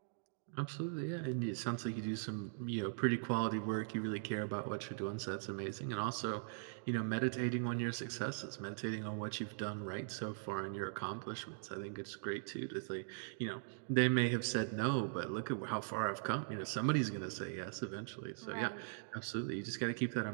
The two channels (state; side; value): silent; left; digital silence